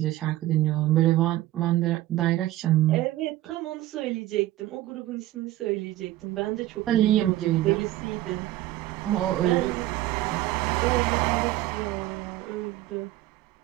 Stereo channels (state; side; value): quieter; left; 15.4 dB